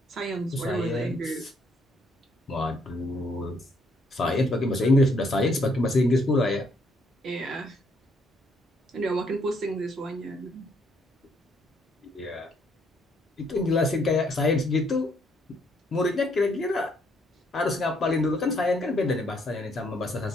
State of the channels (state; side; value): normal; both; correlation 0.70